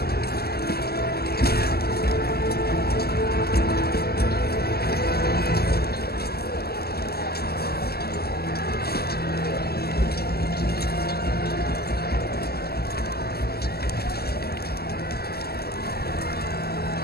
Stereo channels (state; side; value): late; right; 0.46 ms